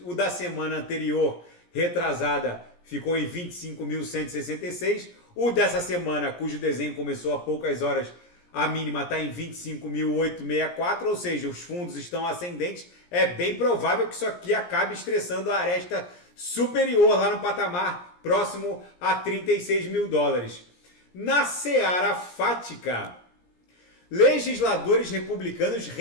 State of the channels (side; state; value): right; late; 17 ms